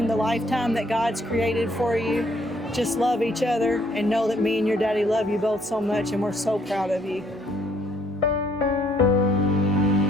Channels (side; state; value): both; normal; correlation 0.66